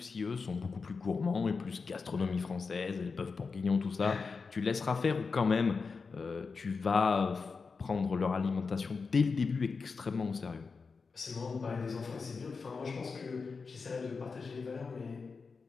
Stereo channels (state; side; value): quieter; right; 4.8 dB